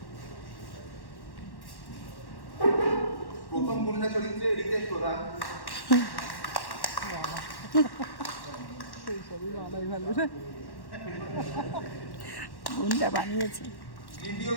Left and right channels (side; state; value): right; late; 1.1 ms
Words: প্রথম গুন্ডা চরিত্রে রিতেশ প্রধান, গুন্ডা বানিয়েছি। দ্বিতীয়